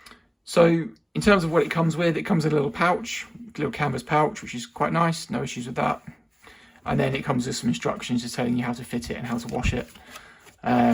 So in terms of what it comes with in a little pouch, a little canvas pouch, which is quite nice, no issues with that. And then it comes with some instructions just telling you how to fit it and how to wash it,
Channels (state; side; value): identical; both; correlation 1.00